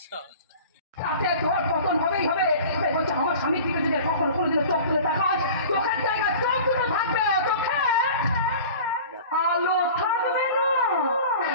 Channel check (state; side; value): inverted; both; correlation -0.41